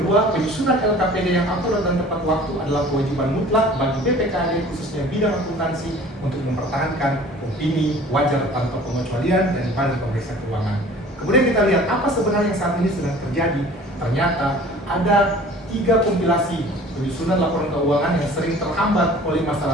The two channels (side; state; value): both; normal; correlation 0.47